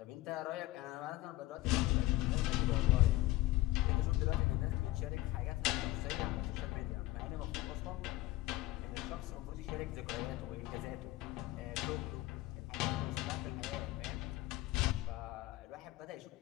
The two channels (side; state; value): right; quieter; 17.4 dB